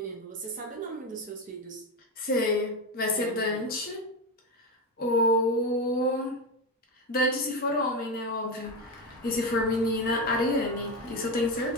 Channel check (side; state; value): both; normal; correlation 0.15